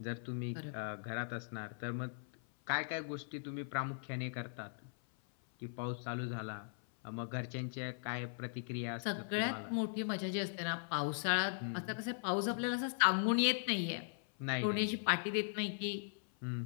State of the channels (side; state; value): right; silent; 52 dB below the other